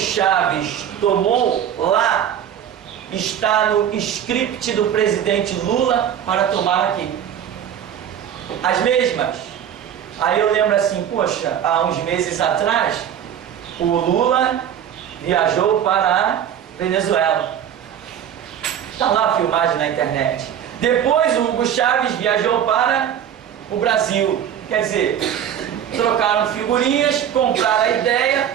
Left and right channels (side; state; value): left; quieter; 9.5 dB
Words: tomou lá está no script do presidente Lula para tomar aqui. As mesmas. Aí eu lembro assim, poxa, há uns meses atrás, o Lula viajou para a Venezuela. Está lá a filmagem na internet. Depois o Hugo Chávez viajou para o Brasil. Quer dizer, trocaram figurinhas, compraram a